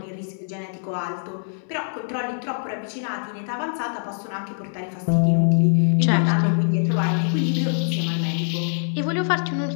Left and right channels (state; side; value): silent; right; digital silence